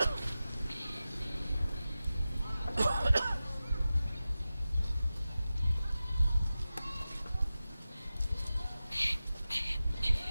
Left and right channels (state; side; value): inverted; both; correlation -0.94